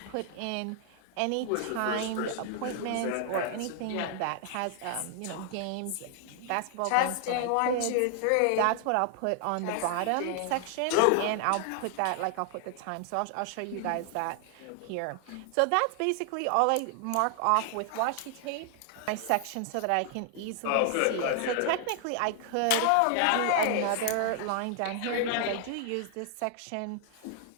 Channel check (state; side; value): different; both; correlation 0.00